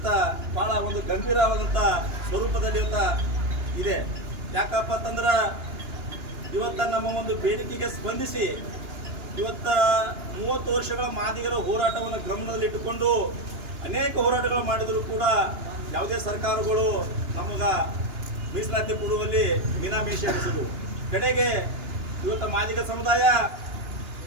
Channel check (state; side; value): late; left; 2.9 ms